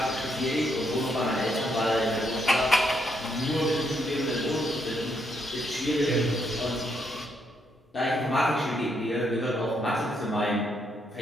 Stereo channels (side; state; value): both; normal; correlation 0.76